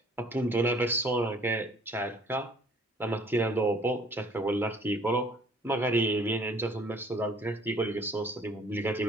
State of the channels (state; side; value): normal; both; correlation 0.56